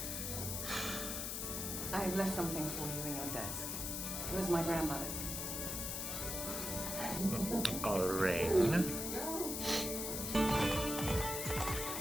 I have left something for you in your desk. It was my grandmother's. Lorraine.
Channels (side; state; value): left; noise; hiss, 3 dB below the sound